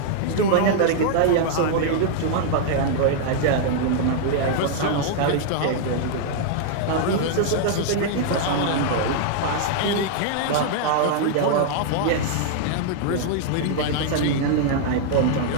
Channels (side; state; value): both; different; correlation -0.01